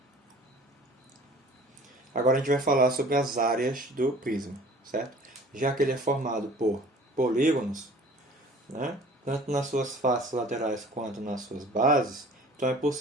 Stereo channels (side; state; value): both; normal; correlation 0.48